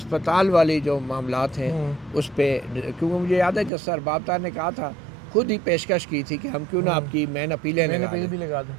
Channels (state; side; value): drops out; left; at 3.7 s